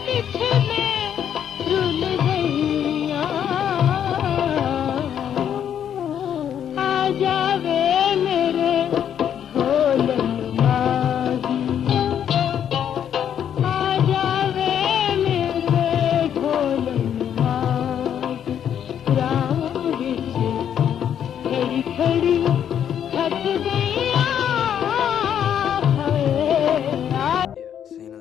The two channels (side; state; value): right; quieter; 9.2 dB